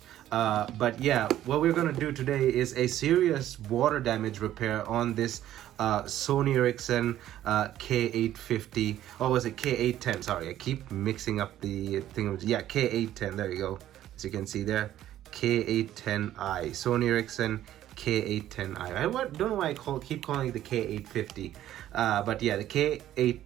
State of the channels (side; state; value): left; quieter; 12.6 dB